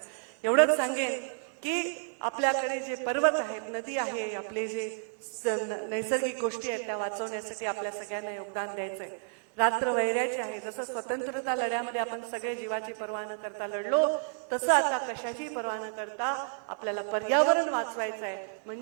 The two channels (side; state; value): left; silent; 57 dB below the other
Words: एवढंच सांगेन की आपल्याकडे जे पर्वत आहेत, नदी आहे, आपले जे नैसर्गिक गोष्टी आहेत त्या वाचवण्यासाठी आपल्या सगळ्यांना योगदान द्यायचंय. रात्र वैऱ्याची आहे. जसं स्वतंत्रता लढ्यामध्ये आपण सगळे जीवाची पर्वा न करता लढलो, तसं आता कशाची पर्वा न करता आपल्याला पर्यावरण वाचवायचं आहे.